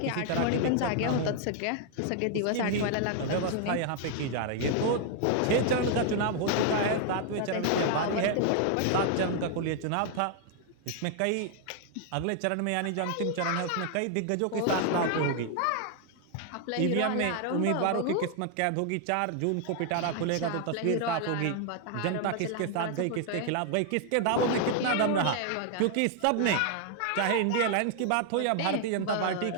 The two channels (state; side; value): different; both; correlation 0.00